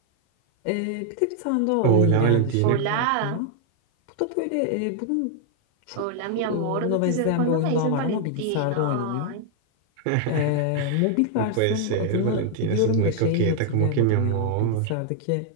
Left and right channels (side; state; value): both; different; correlation 0.00